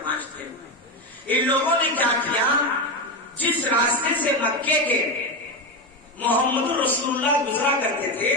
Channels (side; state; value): both; normal; correlation 0.14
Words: تھے۔ ان لوگوں نے کیا کیا، جس راستے سے مکے کے محمد رسول اللہ گزرا کرتے تھے